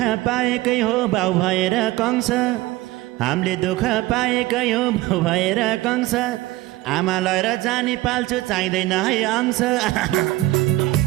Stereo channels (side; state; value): left; quieter; 17.9 dB